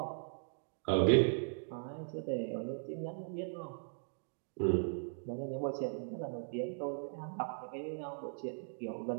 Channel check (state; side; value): silent; left; digital silence